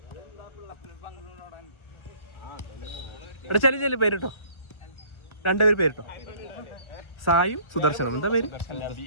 എടാ ചെല്ലു പേരിട്ടോ. 2 പേര് പേരിട്ടോ. സായും സുദർശനം. എന്താ പേര്?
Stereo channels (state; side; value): late; right; 1.4 ms